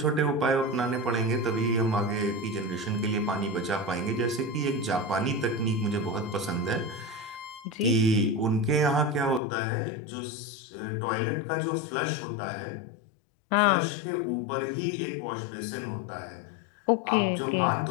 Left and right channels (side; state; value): right; drops out; at 9.4 s